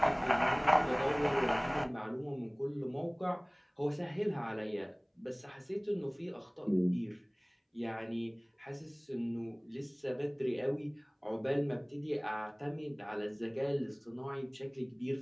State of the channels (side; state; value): both; identical; correlation 1.00